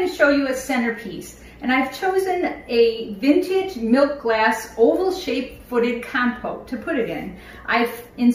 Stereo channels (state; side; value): identical; both; correlation 1.00